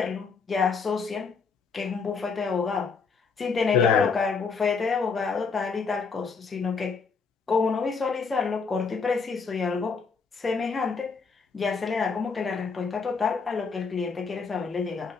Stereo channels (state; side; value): quieter; right; 5.1 dB